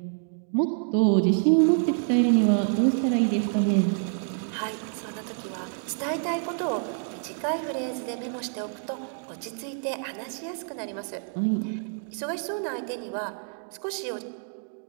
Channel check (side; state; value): left; silent; 60 dB below the other